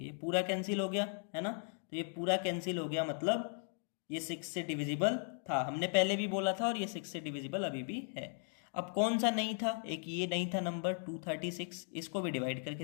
ये पूरा कैंसिल हो गया, है ना। तो ये पूरा कैंसिल हो गया, मतलब ये 6 से डिविजिबल था, हमने पहले भी बोला था, और ये 6 से डिविजिबल अभी भी है। अब कौन सा नहीं था? एक ये नहीं था नंबर 236, इसको भी डिवाइड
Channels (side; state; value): right; silent; 53 dB below the other